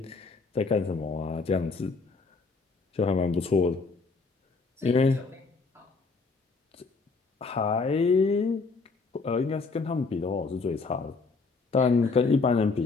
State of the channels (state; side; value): quieter; right; 4.2 dB